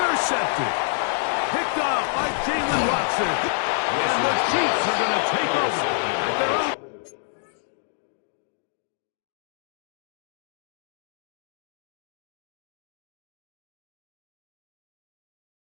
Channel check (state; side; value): silent; right; digital silence